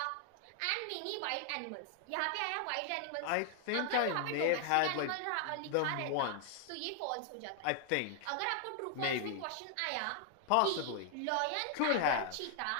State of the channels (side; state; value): both; different; correlation 0.00